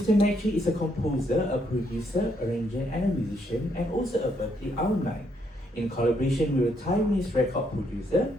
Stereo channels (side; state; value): both; normal; correlation 0.74